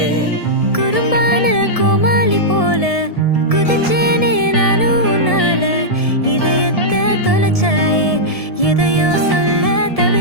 குறும்பான கோமாளி போல குதிச்சேனே நானும் உன்னால. இதயத்தை தொலைச்சாயே, எதையோ சொல்ல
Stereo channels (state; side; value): late; right; 1.7 ms